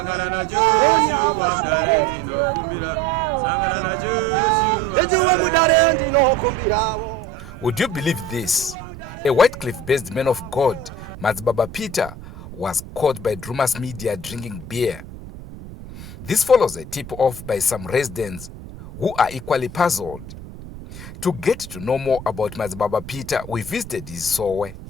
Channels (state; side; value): noise; right; rumble, 14 dB below the sound